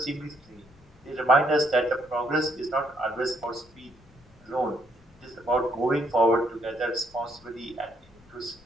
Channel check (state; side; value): noise; left; rumble, 27 dB below the sound